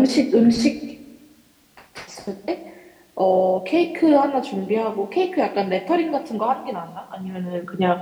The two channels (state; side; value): identical; both; correlation 1.00